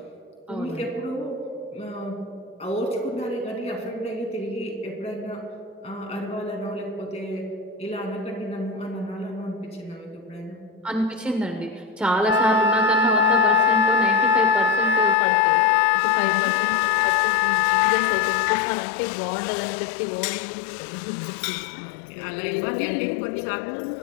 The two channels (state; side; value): drops out; right; at 15.2 s